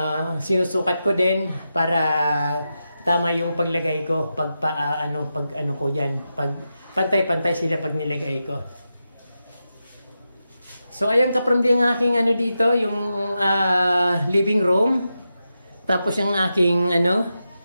Sinusukat ko din para tama yung paglagay ko. Pag ko dyan. Pag pantay-pantay sila pag nilagay ko. So ayan kaprimdi ang aking dito, yung living room. Tapos yung aking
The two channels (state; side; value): inverted; both; correlation -0.89